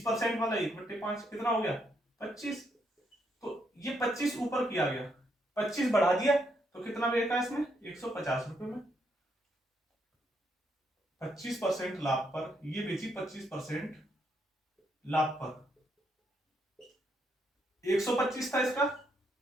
वाला 1/5 कितना हो गया 25। तो ये 25 ऊपर किया गया, 25 बढ़ा दिया तो कितना बेचा इसमें 150 रुपए में। 25% लाभ पर ये बेची, 25% लाभ पर 125 था इसका,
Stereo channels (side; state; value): both; normal; correlation 0.76